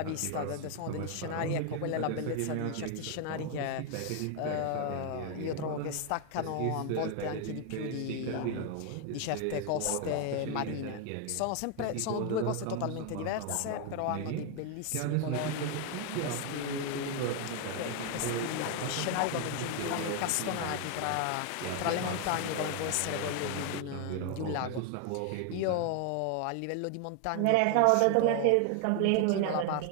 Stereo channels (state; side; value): different; both; correlation 0.00